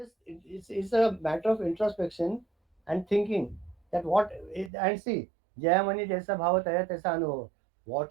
it's a matter of introspection and thinking that and see, jaya mani jaisa bhava taya taisa anubhav.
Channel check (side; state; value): left; drops out; at 4.7 s